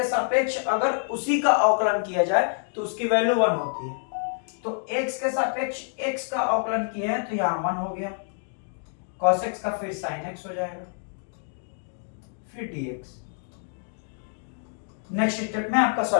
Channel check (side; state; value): right; silent; digital silence